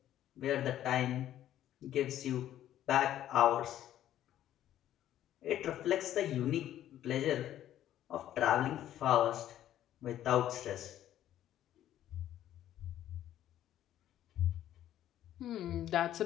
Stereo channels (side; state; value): right; quieter; 12.1 dB